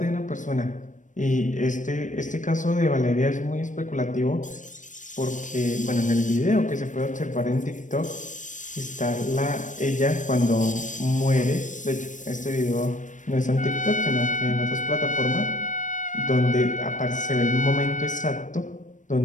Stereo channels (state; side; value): late; right; 0.37 ms